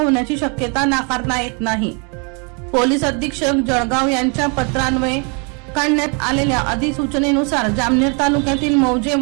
शक्यता नाकारता येत नाही। पोलीस अधीक्षक जळगाव यांच्या पत्रान्वये काढण्यात आलेल्या अधिसूचनेनुसार जामनेर तालुक्यातील मौजे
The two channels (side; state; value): left; quieter; 35.1 dB